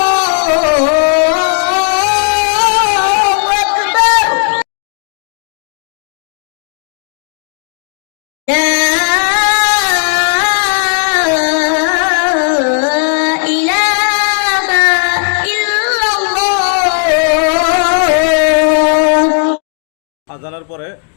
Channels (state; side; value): silent; right; digital silence